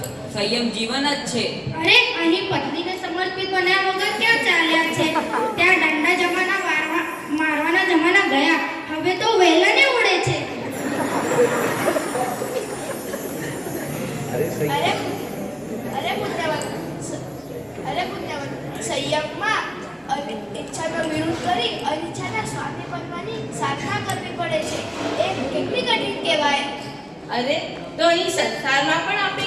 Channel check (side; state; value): both; identical; correlation 1.00